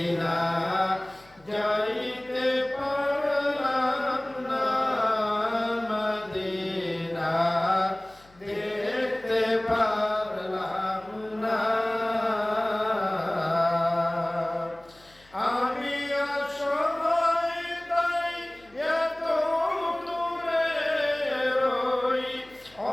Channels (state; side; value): noise; left; hum, 28 dB below the sound